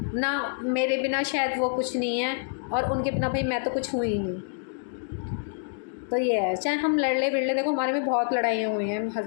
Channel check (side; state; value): right; silent; digital silence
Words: ना, मेरे बिना शायद वो कुछ नहीं है और उनके बिना भाई मैं तो कुछ हुई ही नहीं। तो ये है, चाहे हम लड़ ले बिड़ ले, देखो हमारे में बहुत लड़ाइयाँ हुई हैं,